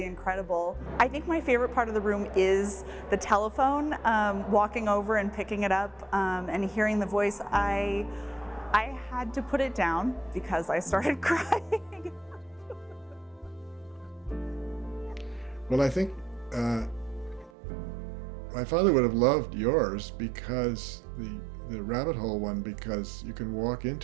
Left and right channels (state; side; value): drops out; left; at 17.5 s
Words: incredible. I think my favorite part of the room is the telephone, walking over and picking it up and hearing the voice. I had to put it down because I started crying. Well, I think my father would have loved yours because the rabbit hole one, because you can walk